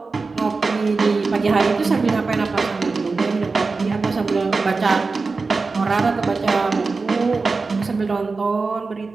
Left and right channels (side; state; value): left; quieter; 4.1 dB